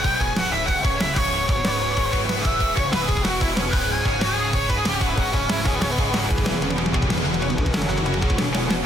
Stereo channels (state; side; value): normal; both; correlation 0.77